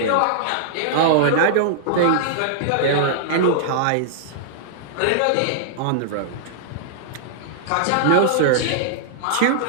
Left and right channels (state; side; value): different; both; correlation -0.02